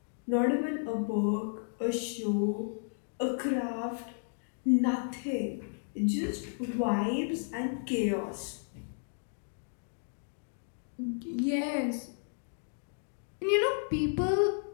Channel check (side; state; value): right; silent; digital silence